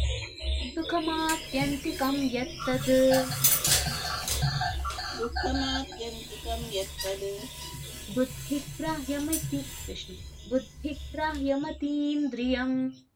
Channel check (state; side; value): identical; both; correlation 1.00